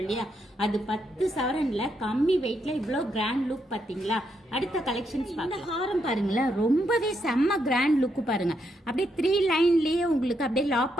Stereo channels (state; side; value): normal; both; correlation 0.79